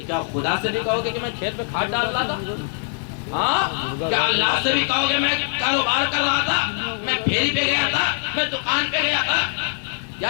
کیا خدا سے بھی کہو گے کہ میں کھیت میں کھاد ڈال رہا تھا؟ ہاں کیا اللہ سے بھی کہو گے میں کاروبار کر رہا تھا، میں پھیری پہ گیا تھا، میں دکان پہ گیا تھا؟ یا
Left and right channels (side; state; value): right; silent; 55 dB below the other